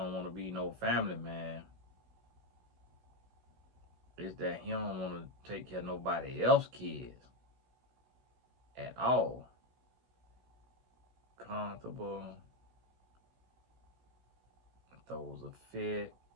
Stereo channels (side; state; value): left; late; 16 ms